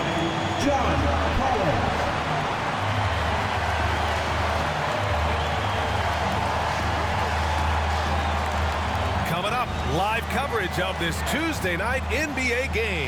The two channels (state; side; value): identical; both; correlation 1.00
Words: John Collins. Coming up, live coverage of this Tuesday night NBA